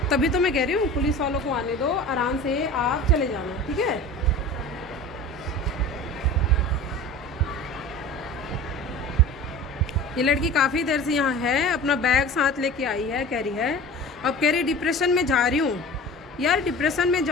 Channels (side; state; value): both; normal; correlation 0.37